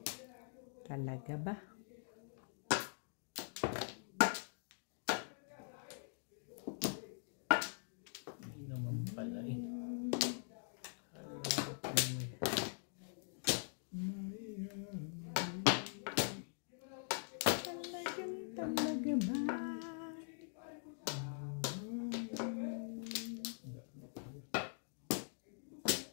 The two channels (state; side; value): silent; right; digital silence